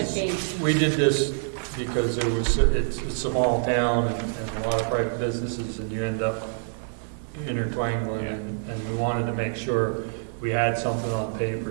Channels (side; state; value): left; silent; 57 dB below the other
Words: this- 8. We did this because it's a small town and a lot of private businesses, and you end up intertwangling, and we wanted to make sure we had something on paper